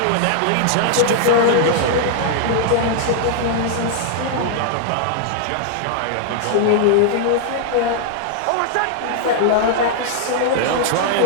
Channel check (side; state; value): both; different; correlation -0.01